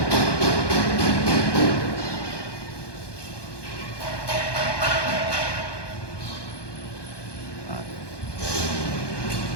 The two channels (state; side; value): late; right; 1.2 ms